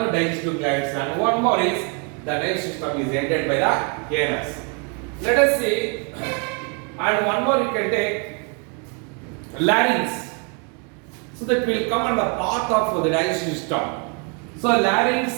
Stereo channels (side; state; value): left; quieter; 36.9 dB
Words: digestive glands. And one more is the digestive system is ಎಂಟೆಡ್ by the anus. Let us see, and one more you can take larynx. So that will come on the path of the digestive system. So